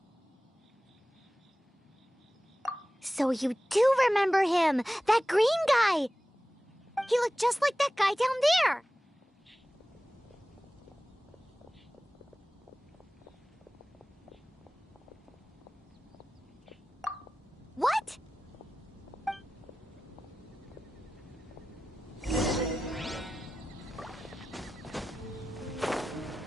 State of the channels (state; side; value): normal; both; correlation 0.95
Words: So you do remember him, that green guy! He looked just like that guy down there! What?